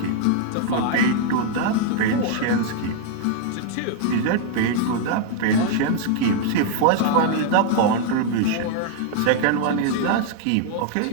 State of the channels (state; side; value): different; both; correlation 0.00